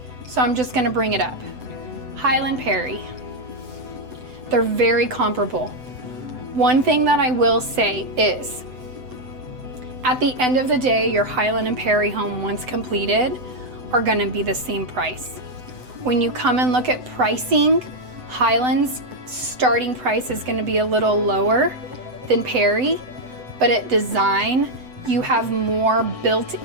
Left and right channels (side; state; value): left; late; 7.9 ms